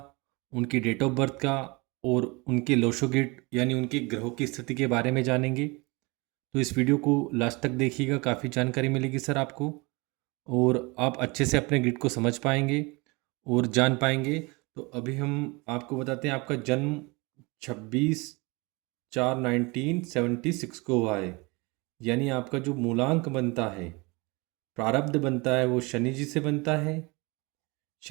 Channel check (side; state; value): left; quieter; 26.5 dB